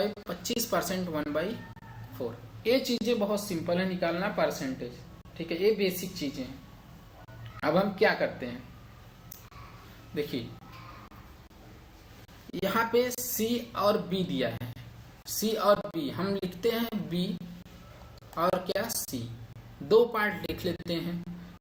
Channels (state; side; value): identical; both; correlation 1.00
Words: 25% 1/4। ये चीजें बहुत सिंपल है निकालना परसेंटेज, ठीक है, ये बेसिक चीजें हैं। अब हम क्या करते हैं, देखिए यहाँ पे सी और बी दिया है, सी और बी हम लिखते हैं बी और क्या सी, दो पार्ट लिख लेते हैं।